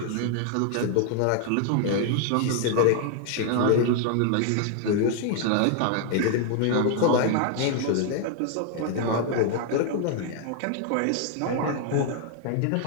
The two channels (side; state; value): both; different; correlation 0.00